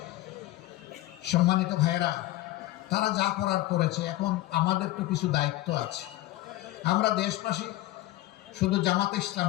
সম্মানিত ভাইয়েরা, তারা যা করার করেছে, এখন আমাদের তো কিছু দায়িত্ব আছে। আমরা দেশবাসী, শুধু জামাতে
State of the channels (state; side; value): quieter; right; 16.9 dB